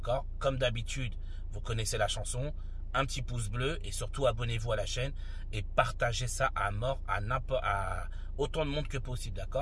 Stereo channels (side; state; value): both; identical; correlation 1.00